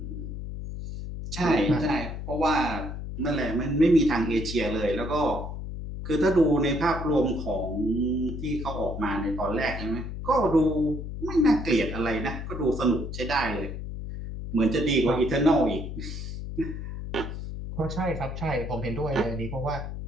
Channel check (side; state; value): left; noise; hum, 7 dB below the sound